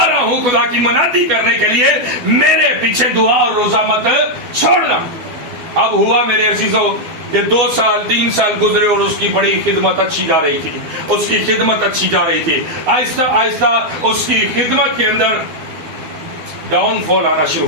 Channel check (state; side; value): late; left; 12 ms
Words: رہا ہوں خدا کی منادی کرنے کے لیے، میرے پیچھے دعا اور روزہ مت چھوڑنا۔ اب ہوا میرے عزیزوں کہ 2 سال 3 سال گزرے اور اس کی بڑی خدمت اچھی جا رہی تھی، اس کی خدمت اچھی جا رہی تھی۔ آہستہ آہستہ اس کی خدمت کے اندر ڈاؤن فال آنا شروع